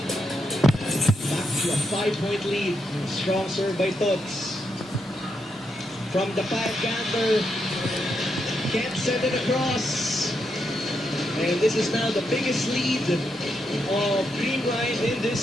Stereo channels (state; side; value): normal; both; correlation 0.82